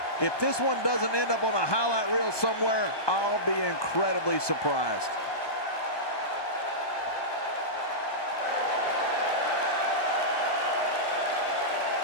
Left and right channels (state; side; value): late; right; 1.2 ms